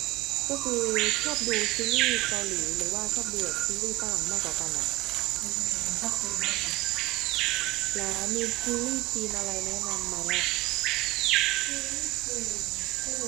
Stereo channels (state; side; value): quieter; left; 19.3 dB